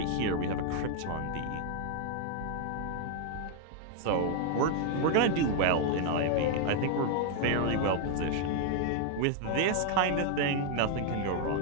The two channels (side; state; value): both; different; correlation 0.00